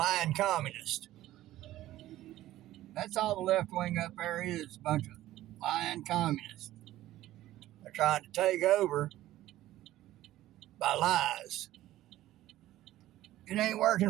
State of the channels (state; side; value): quieter; left; 14.8 dB